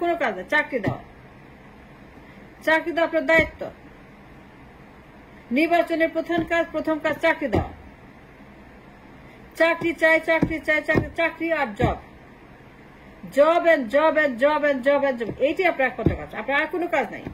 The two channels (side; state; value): both; identical; correlation 1.00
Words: কোনো কাজ না, চাকরি দেওয়া। চাকরি দেওয়া আপনার দায়িত্ব। নির্বাচনের প্রথম কাজ চাকরি দেওয়া। চাকরি চাই, চাকরি চাই, চাকরি আর job, job and job and job and job and job, এইটি আপনার একমাত্র কাজ। আপনার আর কোনো কাজ নাই।